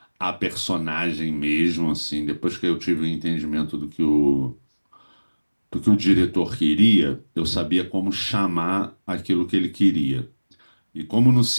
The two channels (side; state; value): both; inverted; correlation -1.00